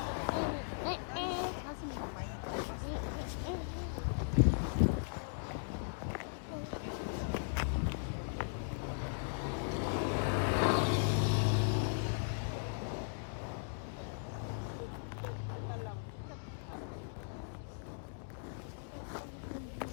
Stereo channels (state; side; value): silent; right; digital silence